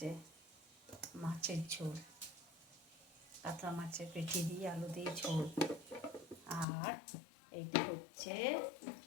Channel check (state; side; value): drops out; right; at 6.7 s